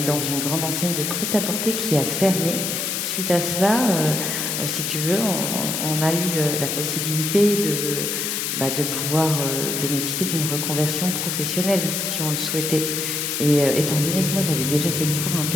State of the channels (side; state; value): left; noise; hiss, 1 dB below the sound